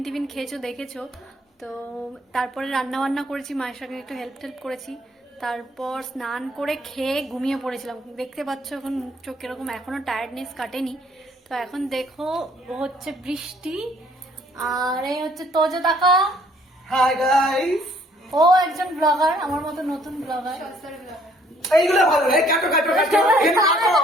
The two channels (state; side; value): normal; both; correlation 0.62